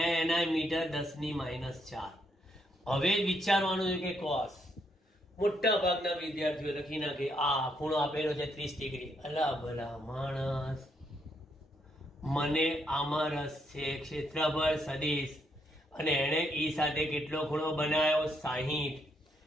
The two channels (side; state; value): both; normal; correlation 0.75